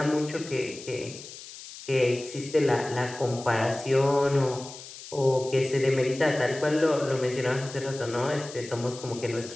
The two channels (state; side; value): noise; left; hiss, 14 dB below the sound